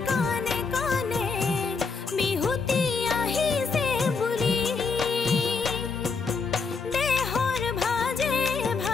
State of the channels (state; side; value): quieter; right; 4.8 dB